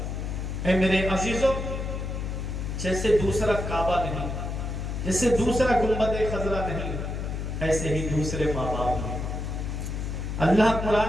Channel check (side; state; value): left; noise; hum, 4 dB below the sound